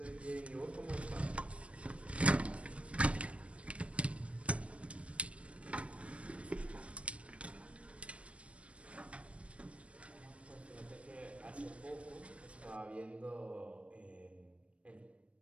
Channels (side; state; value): left; late; 0.062 ms